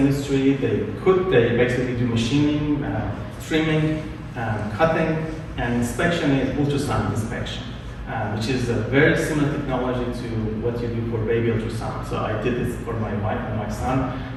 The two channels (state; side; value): identical; both; correlation 1.00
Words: they cook, they basically do machining, trimming, cutting, and inspection is ultrasound inspection, which is a very similar technology to what you do for baby ultrasound. So I did this for my wife and my son.